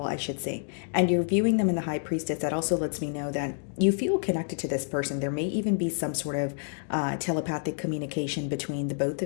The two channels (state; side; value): silent; right; digital silence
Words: I should say. And you're viewing them in the High Priestess. That also lets me know that you feel connected to this person. There may even be some sort of telepathic communication between the both